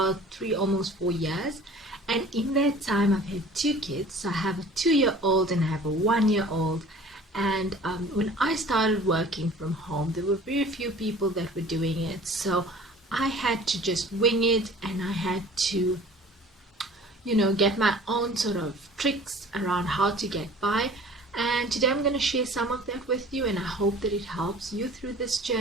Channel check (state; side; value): normal; both; correlation 0.46